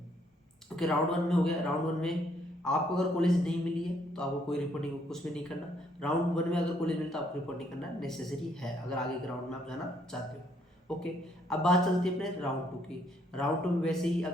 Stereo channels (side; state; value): both; normal; correlation 0.69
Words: ओके, राउंड 1 में हो गया। राउंड 1 में आपको अगर कॉलेज नहीं मिली है तो आपको कोई रिपोर्टिंग कुछ भी नहीं करना। राउंड 1 में अगर कॉलेज मिलता है तो आपको रिपोर्टिंग करना नेसेसरी है, अगर आगे के राउंड में आप जाना चाहते हो। ओके, अब बात चलती है अपने राउंड 2 की। राउंड 2 में वैसे ही